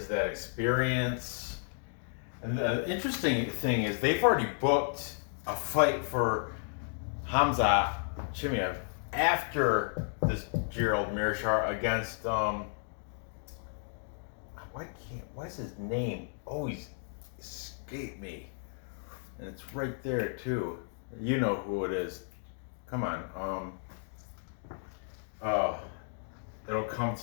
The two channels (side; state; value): right; silent; digital silence